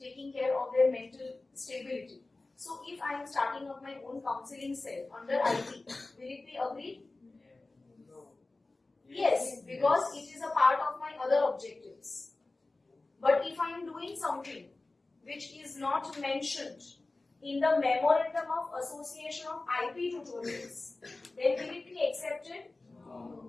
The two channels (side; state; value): right; quieter; 3.2 dB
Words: care of their mental stability. So if I am starting up my own counseling cell under IP, will it be agreed? Yes, because it is a part of my other objectives. But if I am doing something which is not mentioned in the memorandum of association of IP tutorials, then will it be accepted?